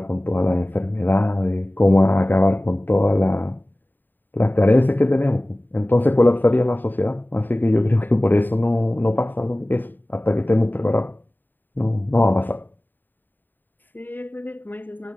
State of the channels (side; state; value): right; late; 0.091 ms